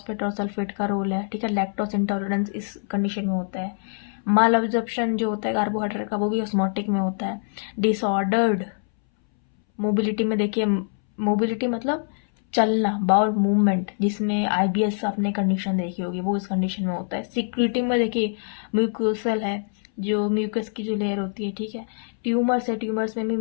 और सल्फेट का रोल है, ठीक है। लैक्टोस इंटॉलरेंस इस कंडीशन में होता है। माल अब्जॉर्प्शन जो होता है कार्बोहाइड्रेट का, वो भी ऑस्मोटिक में होता है। डिसऑर्डर्ड मोबिलिटी में देखिए, मोबिलिटी मतलब चलना, बाउल मूवमेंट, जिसमें आईबीएस आपने कंडीशन देखी होगी, वो इस कंडीशन में होता है। सिक्यूरिटी में देखिए म्यूकोसल है, जो म्यूकस की जो लेयर होती है, ठीक है। ट्यूमर्स है, ट्यूमर्स में भी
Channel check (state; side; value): silent; right; 62 dB below the other